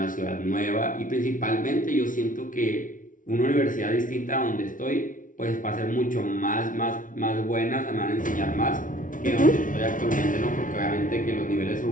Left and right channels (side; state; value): right; late; 0.38 ms